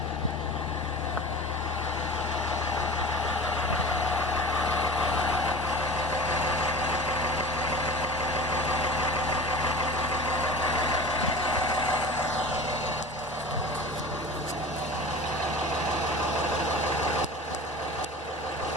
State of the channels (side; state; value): both; normal; correlation 0.36